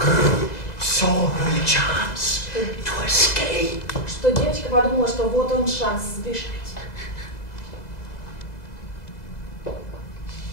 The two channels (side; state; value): right; late; 2.0 ms